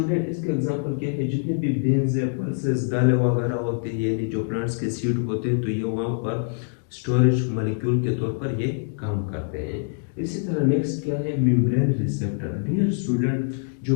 इसके एग्जांपल क्या है, जितने भी बीन्स है, पल्सेस, दालें वगैरह होते हैं, यानी जो प्लांट्स के सीड होते हैं, तो ये वहां पर स्टोरेज मॉलिक्यूल के तौर पर ये काम करते हैं। इसी तरह नेक्स्ट क्या है, मेम्ब्रेन रिसेप्टर। डियर स्टूडेंट, जो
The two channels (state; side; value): silent; right; digital silence